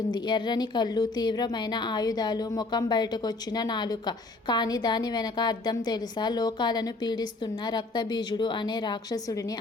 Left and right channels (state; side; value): quieter; right; 3.2 dB